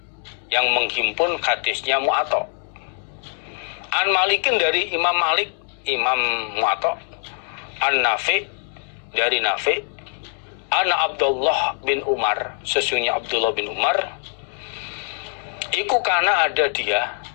yang menghimpun hadisnya Mu'atta. An Malikin dari Imam Malik, Imam Mu'atta. An Nafi dari Nafi. Ana Abdullah bin Umar, sesungguhnya Abdullah bin Umar. Iku karena ada dia.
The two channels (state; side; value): silent; right; 64 dB below the other